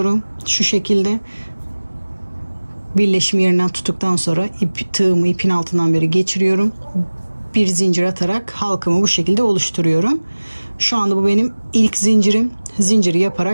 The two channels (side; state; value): both; inverted; correlation -1.00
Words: Şu şekilde birleşim yerinden tuttuktan sonra tığımı ipin altından beri geçiriyorum. Bir zincir atarak halkamı bu şekilde oluşturuyorum. Şu anda bu benim ilk zincirim. Zinciri